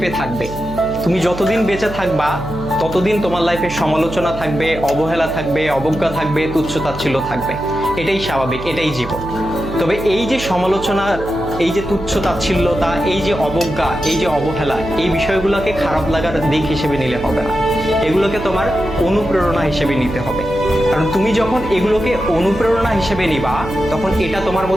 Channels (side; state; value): right; noise; hum, 12 dB below the sound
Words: থাকবে। তুমি যতদিন বেঁচে থাকবা ততদিন তোমার লাইফে সমালোচনা থাকবে, অবহেলা থাকবে, অবজ্ঞা থাকবে, তুচ্ছ-তাচ্ছিল্য থাকবে। এটাই স্বাভাবিক, এটাই জীবন। তবে এই যে সমালোচনা, এই যে তুচ্ছ-তাচ্ছিল্যতা, এই যে অবজ্ঞা, এই যে অবহেলা, এই বিষয়গুলোকে খারাপ লাগার দিক হিসেবে নিলে হবে না। এগুলোকে তোমার অনুপ্রেরণা হিসেবে নিতে হবে। কারণ তুমি যখন এগুলোকে অনুপ্রেরণা হিসেবে নিবা, তখন এটা তোমার